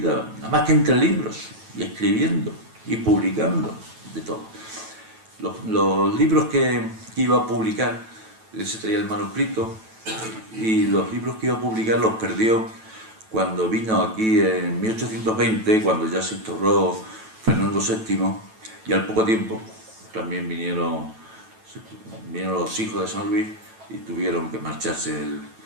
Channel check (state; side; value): late; left; 9.1 ms